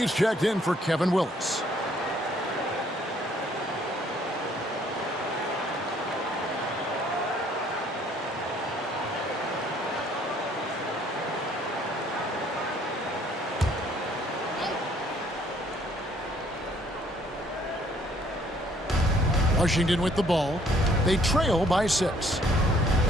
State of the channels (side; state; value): both; normal; correlation 0.62